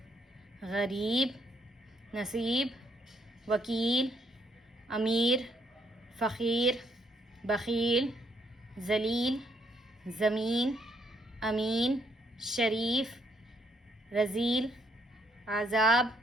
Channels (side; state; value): both; normal; correlation 0.72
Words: غریب، نصیب، وکیل، امیر، فقیر، بخیل، ذلیل، زمین، امین، شریف، رذیل، عذاب،